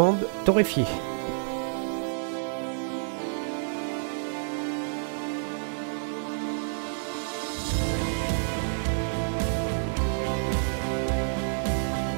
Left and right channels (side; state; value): left; silent; digital silence